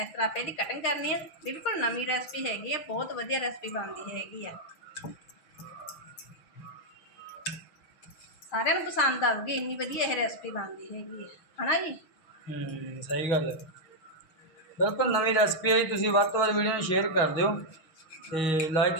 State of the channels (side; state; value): right; late; 6.2 ms